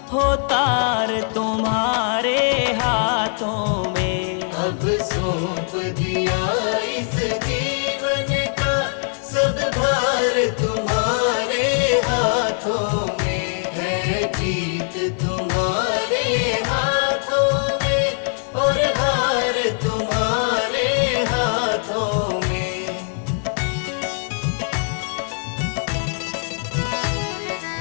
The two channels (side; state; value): right; silent; 65 dB below the other